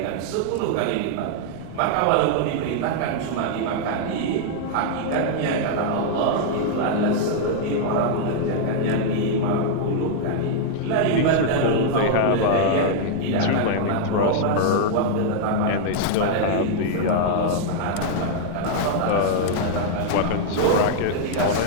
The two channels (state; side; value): different; both; correlation -0.01